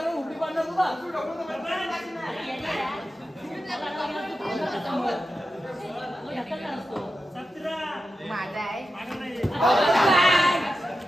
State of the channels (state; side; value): normal; both; correlation 0.90